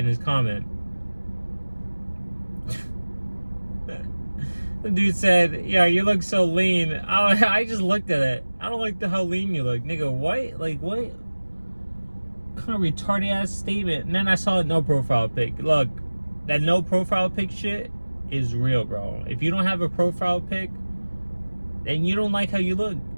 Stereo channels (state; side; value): inverted; both; correlation -1.00